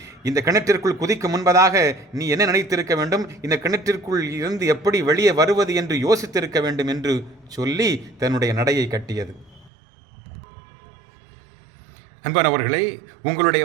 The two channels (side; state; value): left; drops out; at 9.7 s